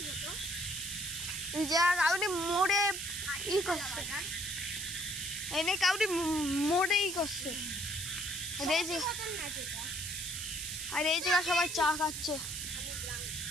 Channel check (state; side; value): noise; right; hiss, 5 dB below the sound